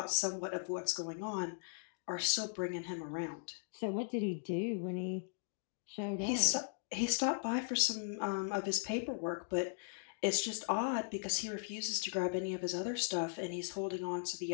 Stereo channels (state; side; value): silent; right; digital silence